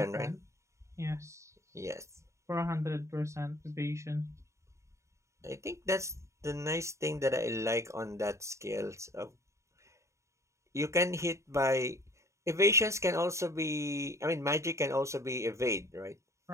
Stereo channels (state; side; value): late; left; 0.14 ms